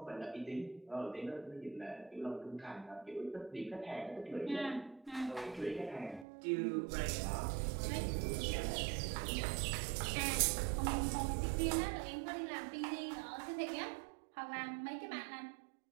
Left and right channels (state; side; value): drops out; left; at 6.2 s